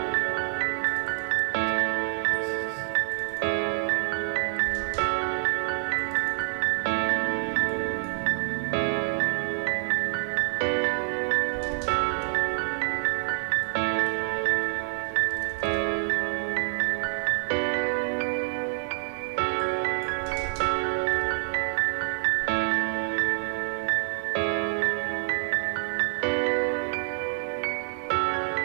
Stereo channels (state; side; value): silent; left; 60 dB below the other